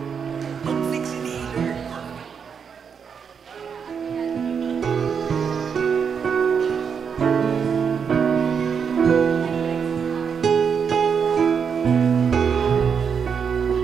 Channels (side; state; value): left; quieter; 6.7 dB